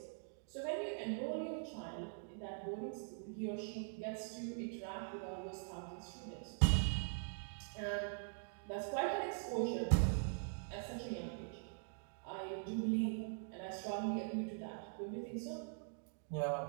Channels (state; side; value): silent; left; digital silence